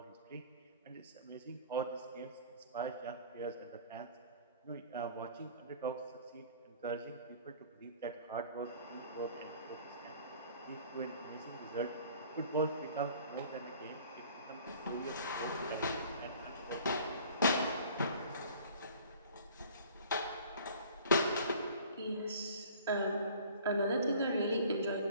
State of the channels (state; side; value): inverted; both; correlation -0.49